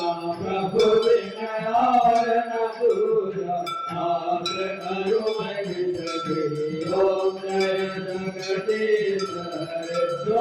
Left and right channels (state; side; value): identical; both; correlation 1.00